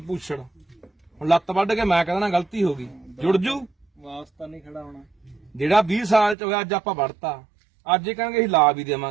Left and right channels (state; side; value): drops out; left; at 6.4 s